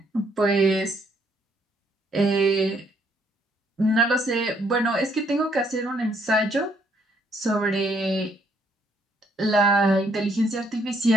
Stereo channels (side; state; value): both; normal; correlation 0.69